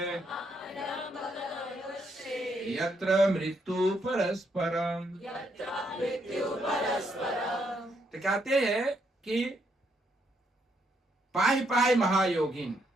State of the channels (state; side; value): normal; both; correlation 0.75